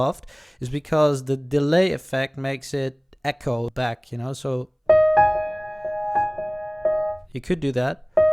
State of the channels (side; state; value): both; identical; correlation 1.00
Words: is because the delay effect makes it echo back, you know, so you could do that.